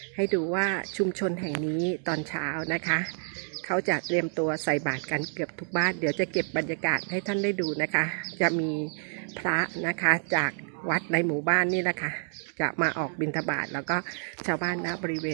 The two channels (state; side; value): silent; left; 57 dB below the other